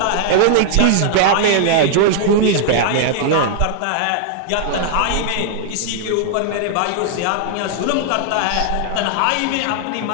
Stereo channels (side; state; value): both; different; correlation -0.01